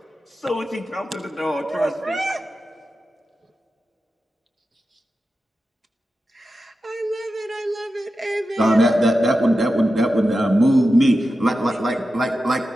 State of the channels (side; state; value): both; normal; correlation 0.91